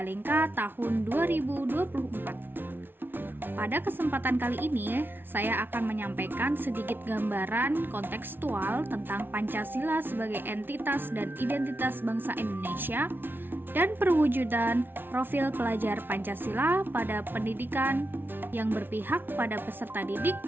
tahun 2024. Pada kesempatan kali ini, saya akan menyampaikan sedikit gambaran kontekstual tentang Pancasila sebagai entitas dan identitas bangsa Indonesia dan perwujudan profil pelajar Pancasila pada pendidikan yang berpihak pada peserta didik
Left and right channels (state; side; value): late; left; 0.10 ms